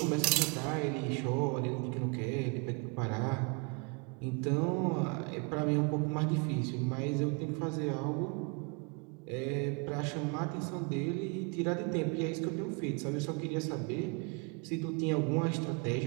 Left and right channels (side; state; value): left; quieter; 33.0 dB